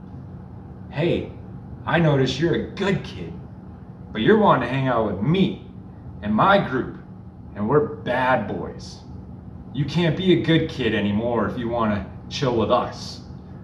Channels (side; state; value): both; identical; correlation 1.00